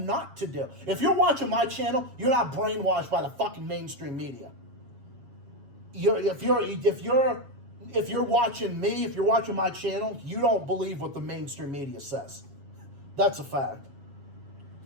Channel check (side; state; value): left; late; 7.3 ms